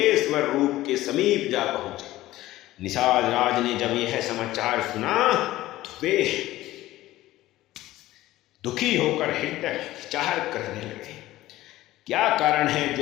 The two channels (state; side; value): quieter; right; 16.1 dB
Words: रूप के समीप जा पहुंचे। निषाद राज ने जब यह समाचार सुना तो वे दुखी होकर हृदय विचार करने लगे, क्या कारण है